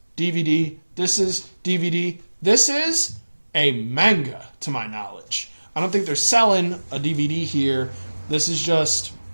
DVD. This is DVD. This is a manga, to my knowledge. I don't think they're selling a DVD here. This is just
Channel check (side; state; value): both; inverted; correlation -1.00